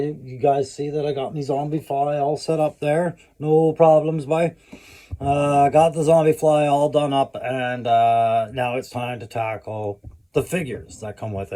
You guys see that I got my zombie fly all set up there. No problems, bye. Got the zombie fly all done up, and now it's time to tackle the figures that come with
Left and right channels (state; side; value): identical; both; correlation 1.00